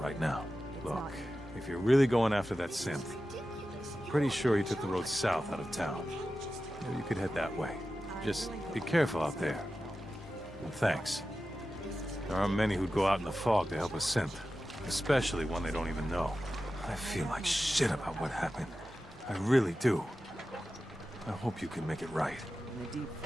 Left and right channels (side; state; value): both; normal; correlation 0.93